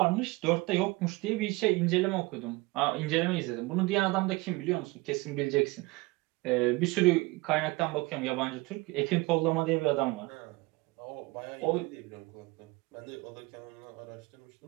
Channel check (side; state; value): left; quieter; 23.6 dB